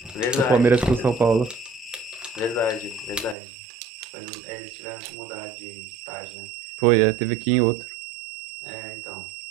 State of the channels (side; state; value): left; drops out; at 3.4 s